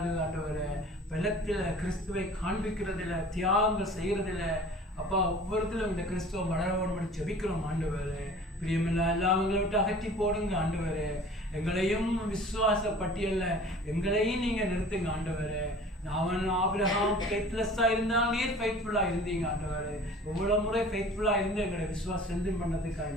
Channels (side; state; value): both; normal; correlation 0.45